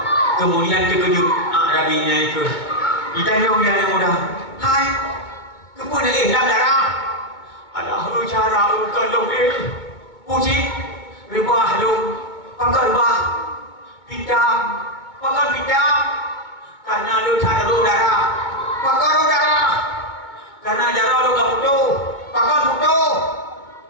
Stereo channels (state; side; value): late; right; 2.2 ms